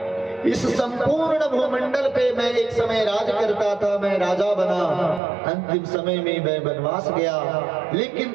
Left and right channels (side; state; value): left; drops out; at 5.2 s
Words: इस संपूर्ण भूमंडल पे मैं एक समय राज करता था, मैं राजा बना। अंतिम समय में मैं वनवास गया,